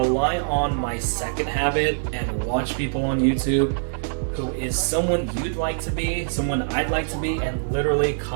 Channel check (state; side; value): silent; left; digital silence